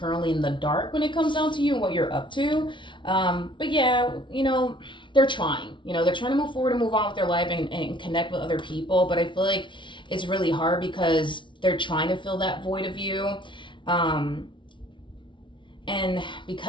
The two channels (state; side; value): late; right; 0.24 ms